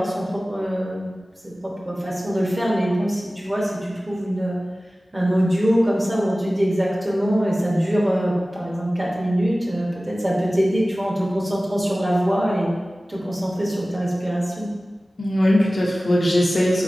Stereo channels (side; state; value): both; normal; correlation 0.97